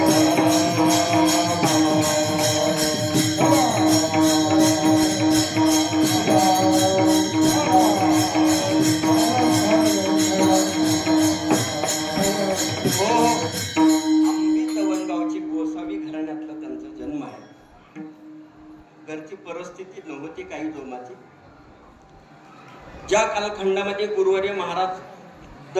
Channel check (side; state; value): both; identical; correlation 1.00